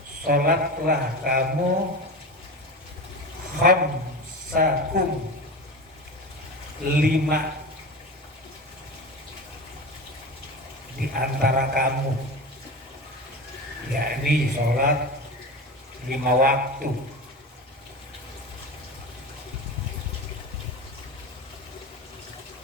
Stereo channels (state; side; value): normal; both; correlation 0.27